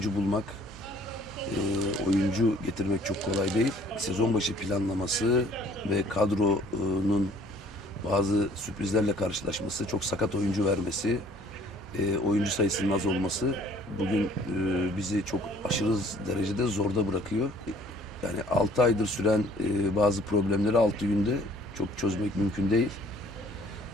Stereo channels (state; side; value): normal; both; correlation 0.56